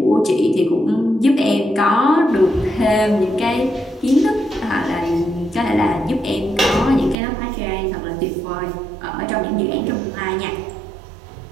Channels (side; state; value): left; drops out; at 7.2 s